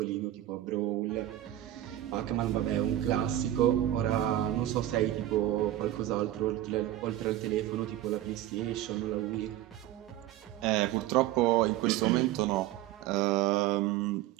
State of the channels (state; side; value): quieter; left; 13.6 dB